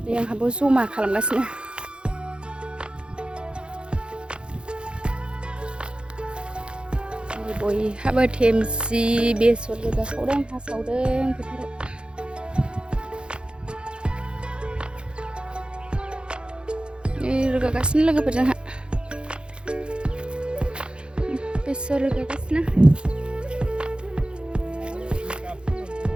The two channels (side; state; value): left; late; 0.053 ms